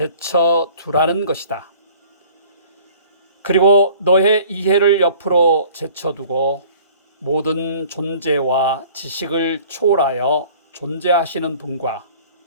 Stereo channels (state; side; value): inverted; both; correlation -0.50